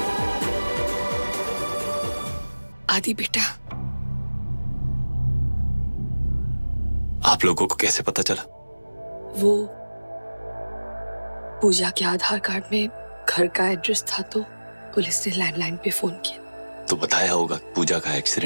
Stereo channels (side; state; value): both; inverted; correlation -1.00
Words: आदि बेटा, आप लोगों को कैसे पता चला? वो पूजा के आधार कार्ड में घर का एड्रेस था तो पुलिस ने लैंडलाइन पे फोन किया। तो बताया होगा पूजा का